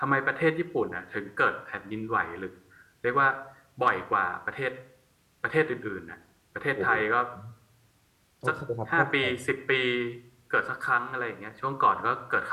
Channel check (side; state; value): both; identical; correlation 1.00